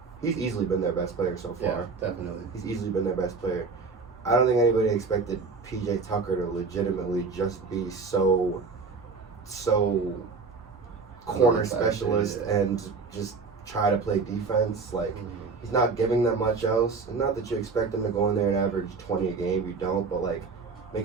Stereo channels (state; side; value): quieter; left; 4.5 dB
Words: He's easily been their best player so far. Yeah, definitely. He's easily been their best player. I don't think anybody expected PJ Tucker to legitimately just be so corner specialist and just try to play defense. Like, he's not giving them much else. And not that you expect him to go in there and average 20 a game. You don't, but like, make